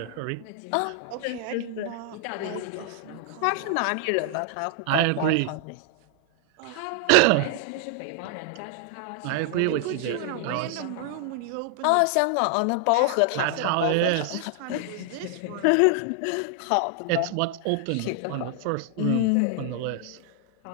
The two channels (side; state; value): both; different; correlation 0.00